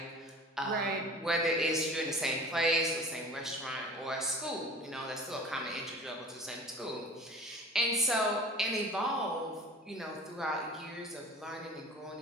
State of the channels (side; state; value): both; normal; correlation 0.41